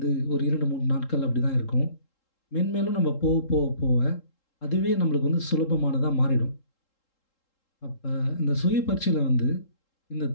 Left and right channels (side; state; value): right; late; 3.7 ms